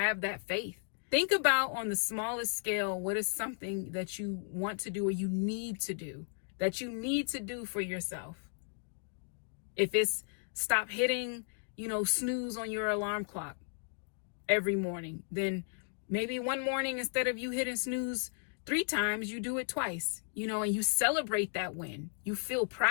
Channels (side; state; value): right; silent; 55 dB below the other